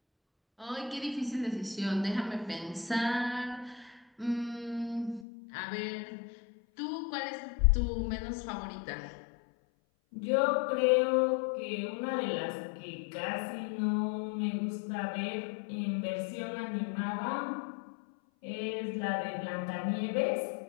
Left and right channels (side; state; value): right; drops out; at 5.2 s